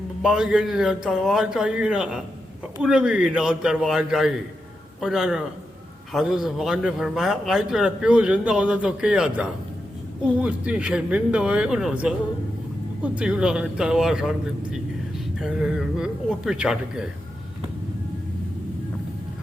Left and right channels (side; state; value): both; normal; correlation 0.87